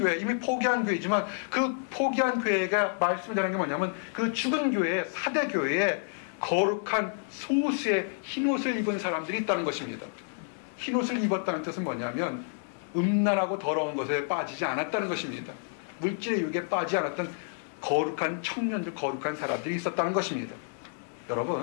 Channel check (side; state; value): right; silent; digital silence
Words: 이미 포기한 교회지만 그 포기한 교회가 말씀드리는 게 뭐냐면 그 죽은 교회, 사대 교회에 거룩한 소수의 흰옷을 입은 사람들이 있다는 것입니다. 흰옷을 입었다는 뜻은 뭐냐면 음란하고 더러운 것에 빠지지 않았다는 것입니다. 물질의 유혹에 빠지지 않았던 거룩한 청년들, 거룩한 사람들이 있었다는 것입니다.